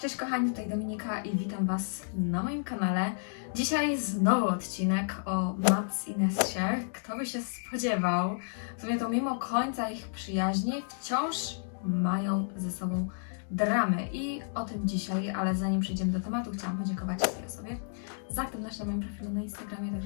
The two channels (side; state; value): right; silent; digital silence